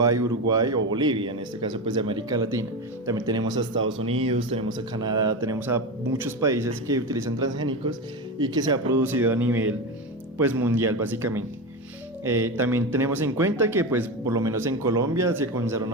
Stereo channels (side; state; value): both; normal; correlation 0.19